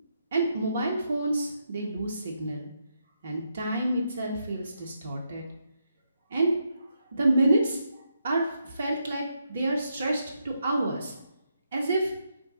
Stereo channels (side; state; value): both; inverted; correlation -0.81